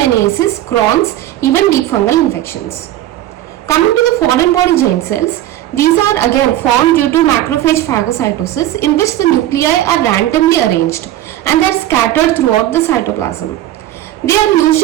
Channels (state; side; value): quieter; left; 13.5 dB